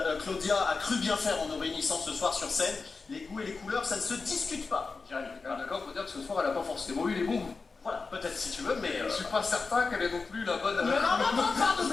Claudia a cru bien faire en nous réunissant ce soir sur scène. Les goûts et les couleurs, ça ne se discute pas, Jérémy. D'accord, faut dire que ce soir, elle a pas forcément eu les bons goûts. Voilà, peut-être si tu veux, mais. Je suis pas certain qu'elle est non plus la bonne. Mais non, pas de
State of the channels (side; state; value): right; quieter; 4.3 dB